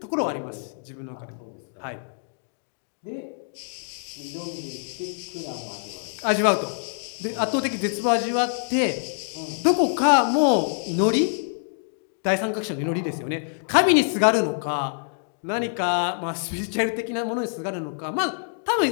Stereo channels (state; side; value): silent; right; digital silence